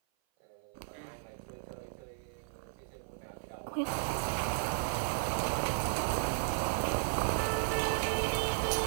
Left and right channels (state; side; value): silent; left; 55 dB below the other